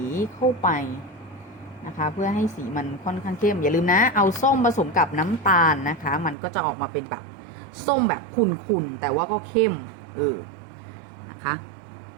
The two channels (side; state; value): left; drops out; at 6.4 s